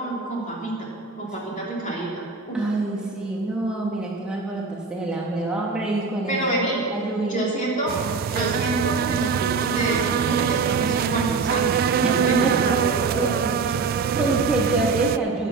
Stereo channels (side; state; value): left; quieter; 4.4 dB